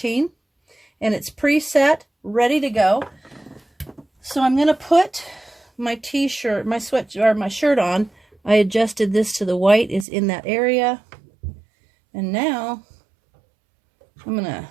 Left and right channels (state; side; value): drops out; left; at 10.1 s